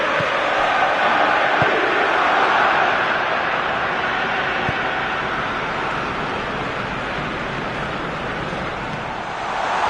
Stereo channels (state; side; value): identical; both; correlation 1.00